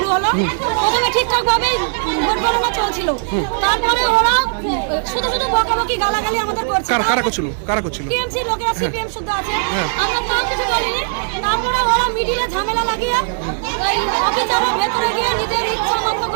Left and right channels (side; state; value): left; silent; digital silence